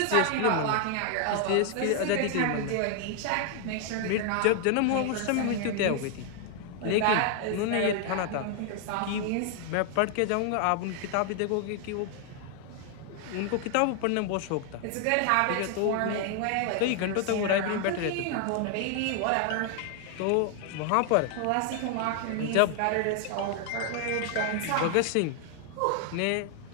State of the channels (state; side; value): different; both; correlation 0.00